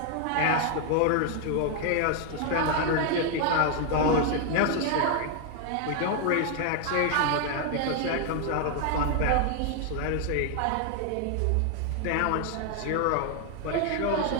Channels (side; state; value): both; different; correlation 0.00